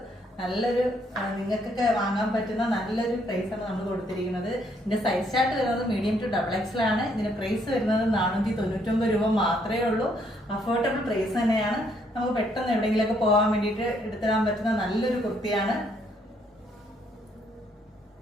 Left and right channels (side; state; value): both; normal; correlation 0.70